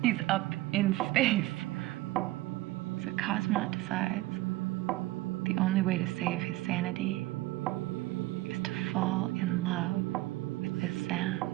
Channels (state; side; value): quieter; left; 18.0 dB